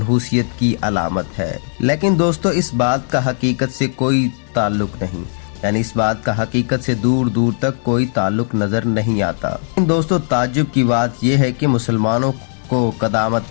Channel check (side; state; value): right; silent; digital silence